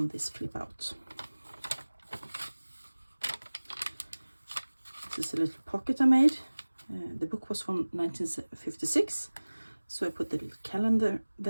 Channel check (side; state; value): both; inverted; correlation -1.00